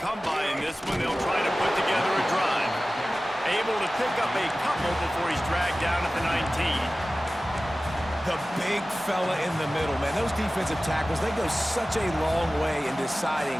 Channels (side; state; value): both; normal; correlation 0.96